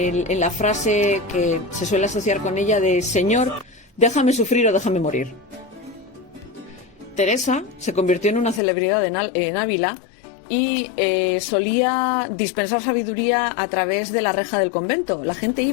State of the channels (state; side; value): drops out; right; at 8.6 s